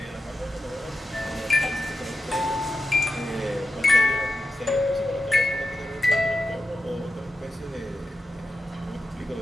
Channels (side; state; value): both; normal; correlation 0.90